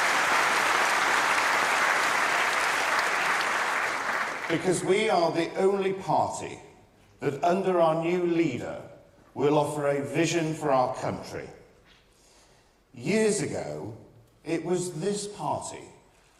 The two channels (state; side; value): identical; both; correlation 1.00